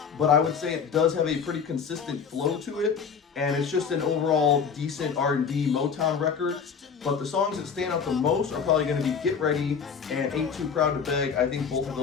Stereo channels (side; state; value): right; quieter; 6.3 dB